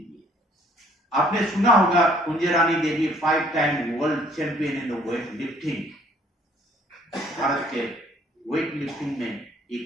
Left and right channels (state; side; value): normal; both; correlation 0.60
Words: आपने सुना होगा कुंजरानी देवी 5 time world champion in weight lifting, Bharat के वेट लिफ्टिंग में